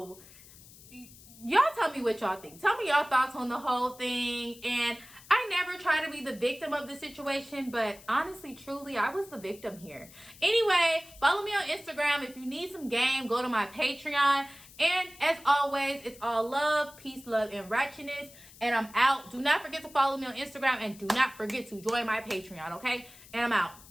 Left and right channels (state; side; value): noise; left; hiss, 21 dB below the sound